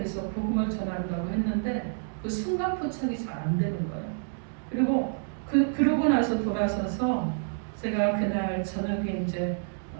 복음을 전한다고 했는데 그 순간 포착이 잘 안 되는 거예요. 그리고 그러고 나서 돌아서서 제가 그날 저녁에 이제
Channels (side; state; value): left; silent; digital silence